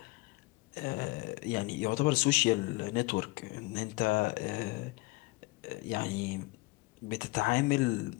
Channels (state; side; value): quieter; right; 23.1 dB